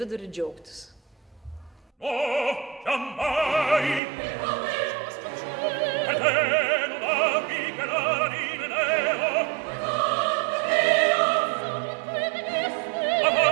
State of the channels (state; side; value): drops out; left; at 4.0 s